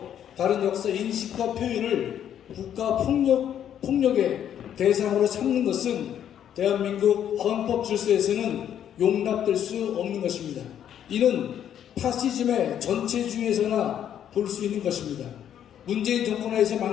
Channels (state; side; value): quieter; right; 9.9 dB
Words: 다른 역사 인식과 표현을 국가 폭력의 대상으로 삼는 것은 대한민국 헌법 질서에서는 용납될 수 없는 것입니다. 이는 파시즘의 전체주의에서나 볼 수 있는 것입니다. 문재인 정권하에서